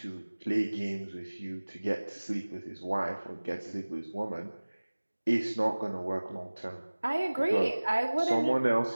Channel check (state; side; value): inverted; both; correlation -1.00